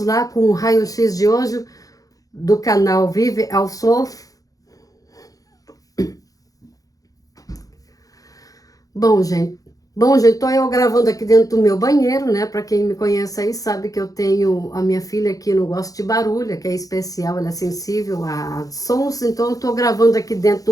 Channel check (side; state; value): right; late; 0.17 ms